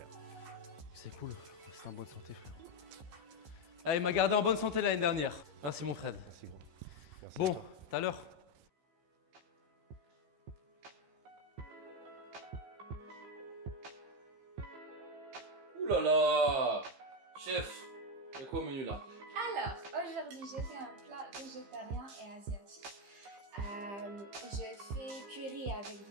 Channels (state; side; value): late; left; 15 ms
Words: C'est cool, c'est en bonne santé frère. Ah, il m'a gardé en bonne santé l'année dernière. Merci mon Fred. Merci gros. Merci Bon, à toi. tout à l'heure. Ouh là là! Chef, il y a quoi au menu là? Alors, aujourd'hui, j'ai fait un plat végétarien et asiatique. Je fais curry avec